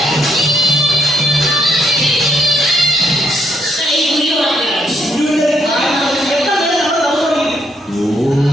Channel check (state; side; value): normal; both; correlation 0.74